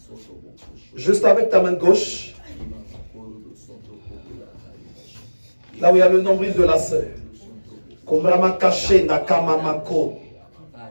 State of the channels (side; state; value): both; inverted; correlation -1.00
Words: juste avec ta main gauche là où il y a le nombril de la sœur.